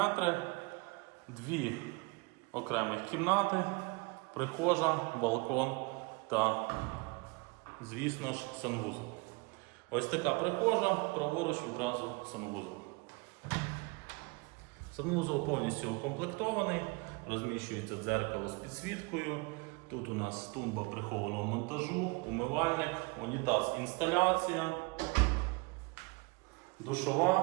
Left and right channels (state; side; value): quieter; left; 27.9 dB